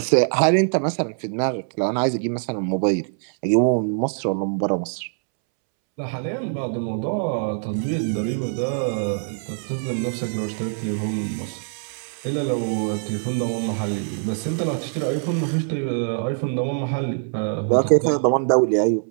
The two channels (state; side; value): silent; left; 63 dB below the other